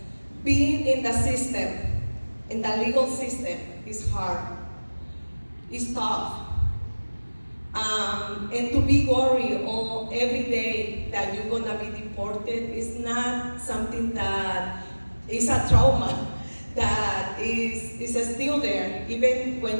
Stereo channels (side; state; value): both; inverted; correlation -1.00